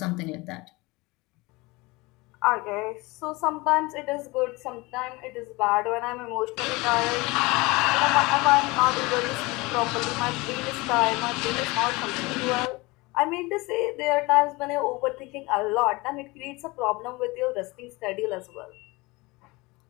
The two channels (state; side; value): quieter; right; 23.5 dB